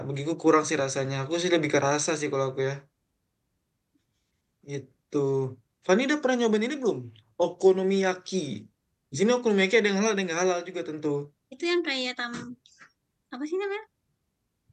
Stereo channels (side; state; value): both; identical; correlation 1.00